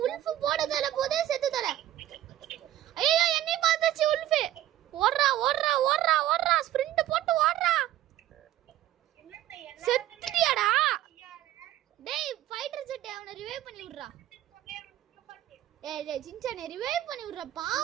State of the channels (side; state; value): left; quieter; 13.5 dB